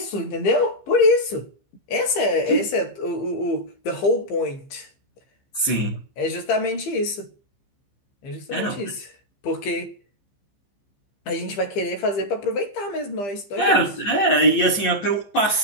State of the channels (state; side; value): late; right; 15 ms